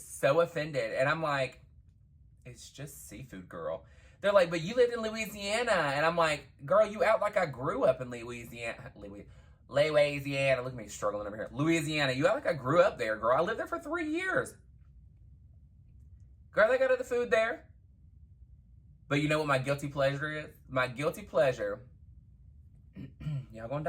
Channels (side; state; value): both; identical; correlation 1.00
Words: offended, and I'm like, it's just seafood, girl. They're like, but you lived in Louisiana. And I'm like, girl, you act like I grew up in Louisiana. Louisiana. Look at me struggling over here. Louisiana. You act like I grew up there, girl. I lived there for 3 years. Girl, they got other food there. But you know what my guilty pleasure is? My guilty pleasure. Y'all gonna